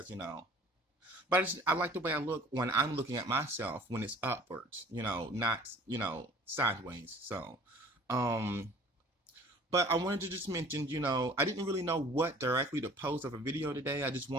but I like the way I look when I'm looking at myself when it's upwards, not, sideways. So, um, but I wanted to just mention, I didn't really know what directly to post of a video today. I just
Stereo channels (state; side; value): normal; both; correlation 0.49